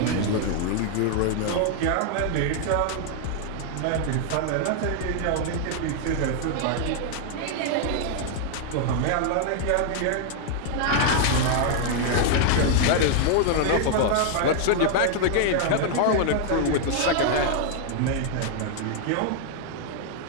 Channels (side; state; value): both; different; correlation 0.00